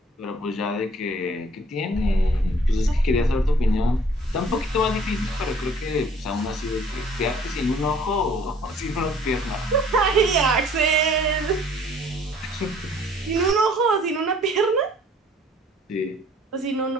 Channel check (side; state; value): both; normal; correlation 0.56